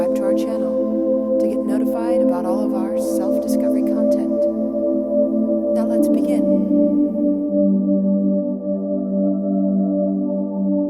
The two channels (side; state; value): both; identical; correlation 1.00